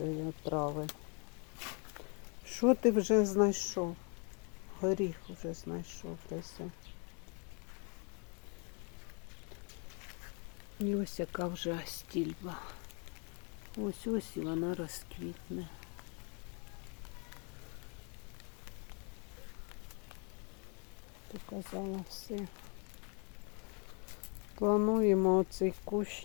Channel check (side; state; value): right; quieter; 36.0 dB